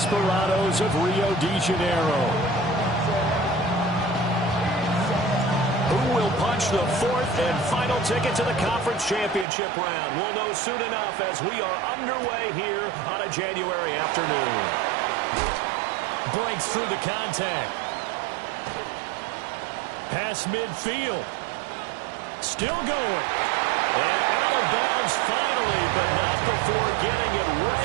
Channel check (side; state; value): left; drops out; at 9.5 s